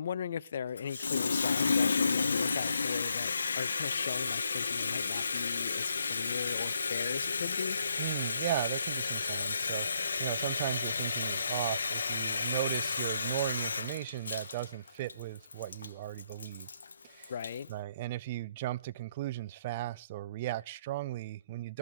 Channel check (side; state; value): both; inverted; correlation -0.73